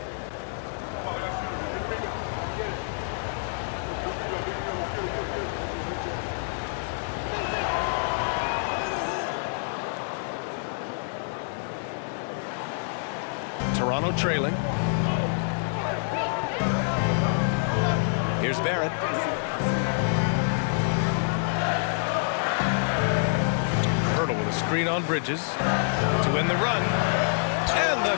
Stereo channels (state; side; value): silent; right; digital silence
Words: Toronto trailing. Here's Barrett. Pirtle with a screen on Bridges to win the run. And the